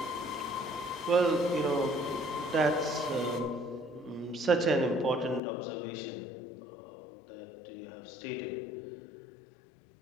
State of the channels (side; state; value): right; drops out; at 5.4 s